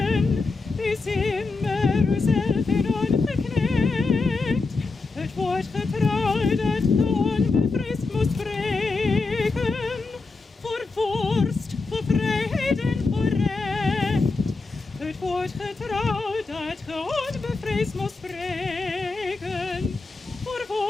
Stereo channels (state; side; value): quieter; right; 3.8 dB